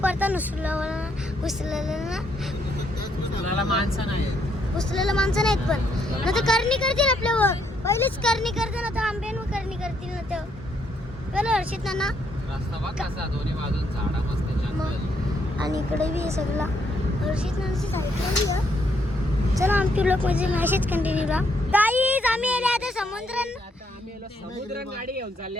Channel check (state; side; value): normal; both; correlation 0.73